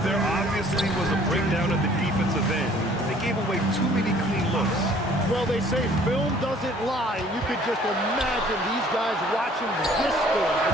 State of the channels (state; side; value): normal; both; correlation 0.56